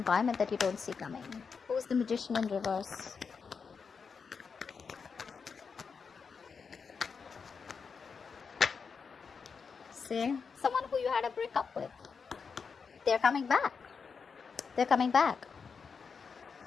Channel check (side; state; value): right; quieter; 5.6 dB